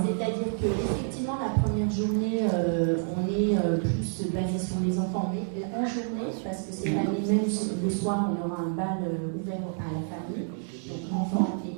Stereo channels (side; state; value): left; silent; 59 dB below the other